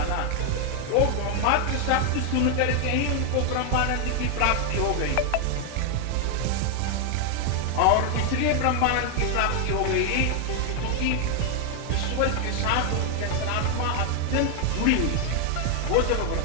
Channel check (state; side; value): different; both; correlation 0.00